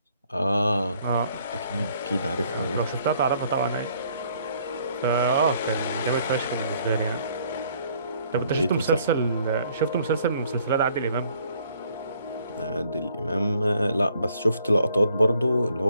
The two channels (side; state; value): both; inverted; correlation -0.63